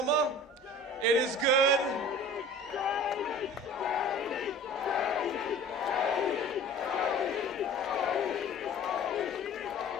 It is good.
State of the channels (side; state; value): both; normal; correlation 0.43